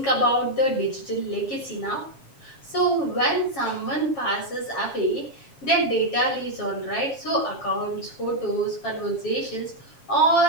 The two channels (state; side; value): late; right; 7.3 ms